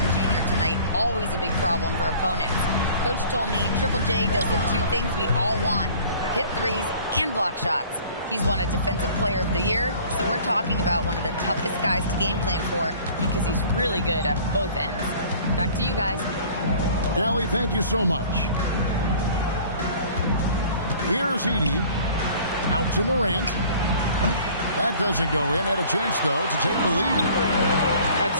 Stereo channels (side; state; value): both; inverted; correlation -0.49